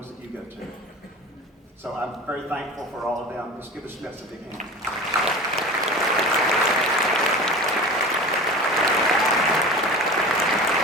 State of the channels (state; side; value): normal; both; correlation 0.34